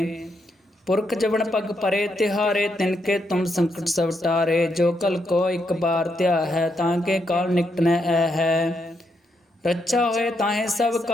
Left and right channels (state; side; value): normal; both; correlation 0.79